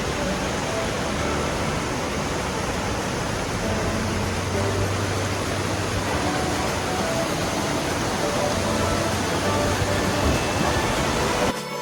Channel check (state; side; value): identical; both; correlation 1.00